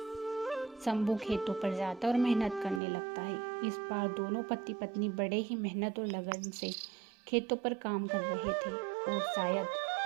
शंभू खेतों पर जाता और मेहनत करने लगता है। इस बार दोनों पति पत्नी बड़े ही मेहनत और लगन से खेतों पर काम कर रहे थे और शायद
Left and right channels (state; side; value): drops out; left; at 2.8 s